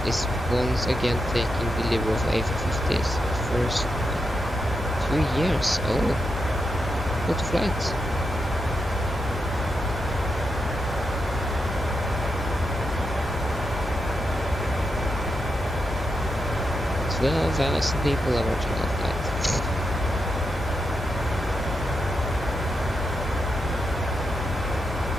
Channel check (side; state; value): both; normal; correlation 0.85